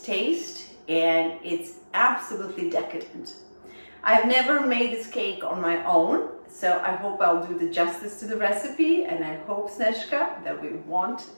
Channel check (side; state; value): both; inverted; correlation -1.00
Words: taste and it's absolutely decadent. I've never made this cake on my own, so I hope I'll do the justice to the recipe, and I hope, Sneška, that we won't